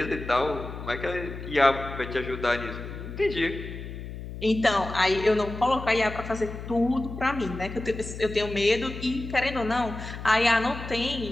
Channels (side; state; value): left; noise; hum, 10 dB below the sound